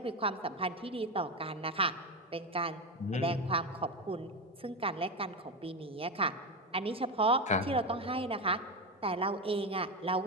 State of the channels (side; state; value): both; normal; correlation 0.15